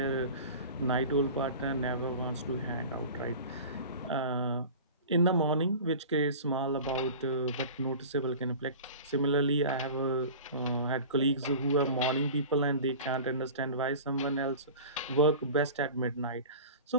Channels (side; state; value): both; inverted; correlation -0.37